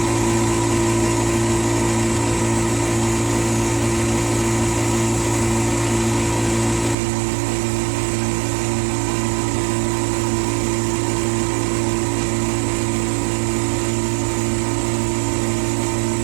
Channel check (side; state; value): left; drops out; at 7.0 s